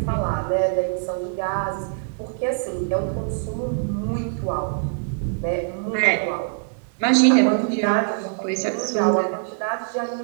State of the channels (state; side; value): silent; left; digital silence